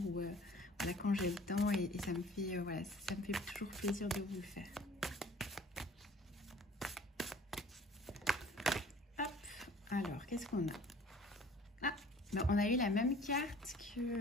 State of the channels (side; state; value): both; normal; correlation 0.50